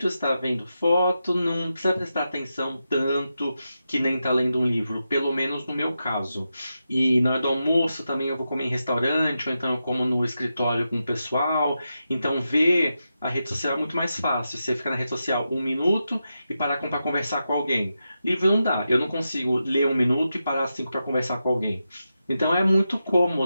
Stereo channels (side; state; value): both; inverted; correlation -0.88